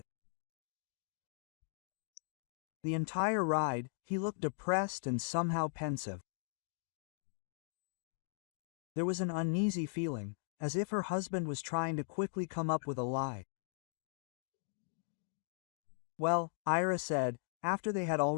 The entire ride, he looked depressed and somehow pensive. There was an uneasy feeling, as if her husband was trying to quickly come up with a lie. "Well," Ira said, after they had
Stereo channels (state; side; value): silent; right; digital silence